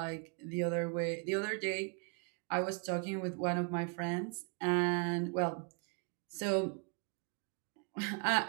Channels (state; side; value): quieter; left; 36.9 dB